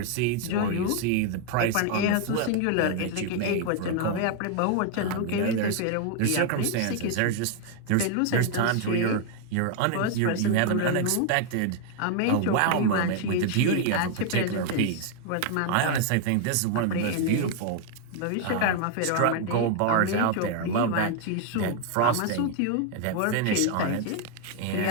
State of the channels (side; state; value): both; different; correlation 0.00